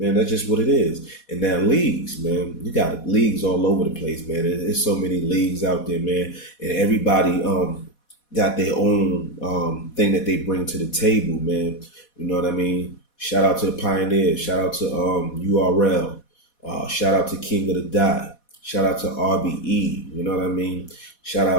that's just what it is. And now leagues, man, you got leagues all over the place, man. There's so many leagues out there, man, and everybody got their own thing that they bring to the table, man. You know what I mean? Shout out to the Pioneers. Shout out to URL. Shout out to King of the Dot. Shout out to RBE, you know what I mean? Shout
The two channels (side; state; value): right; late; 4.2 ms